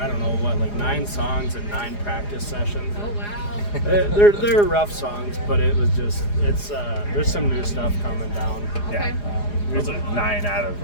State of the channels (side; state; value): right; late; 4.9 ms